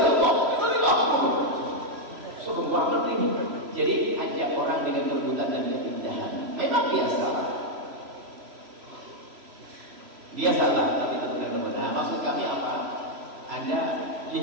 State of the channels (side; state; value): left; late; 3.0 ms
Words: Sombong banget ini. Jadi ajak orang dengan kelembutan dan keindahan. Memang dia salah. Dia salah, tapi tetap dengan lembut. Nah, maksud kami apa? Anda